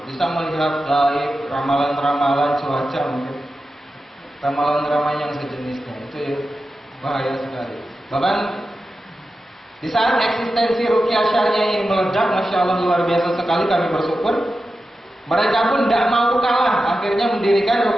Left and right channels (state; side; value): normal; both; correlation 0.92